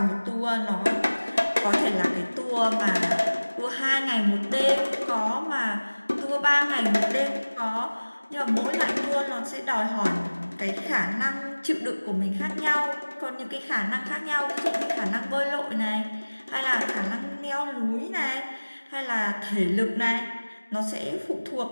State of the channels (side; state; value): both; inverted; correlation -1.00